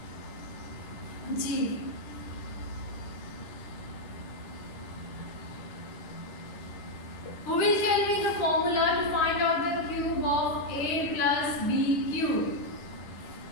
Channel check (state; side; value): late; right; 10 ms